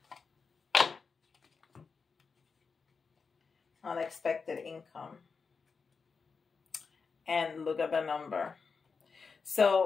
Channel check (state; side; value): quieter; right; 5.1 dB